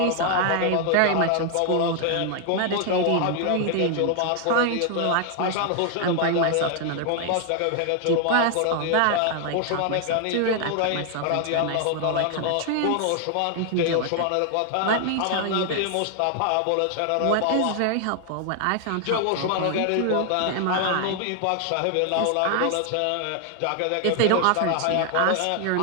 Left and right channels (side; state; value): both; different; correlation 0.00